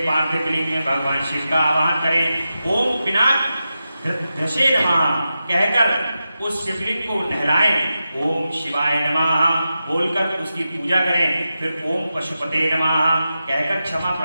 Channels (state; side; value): inverted; both; correlation -0.90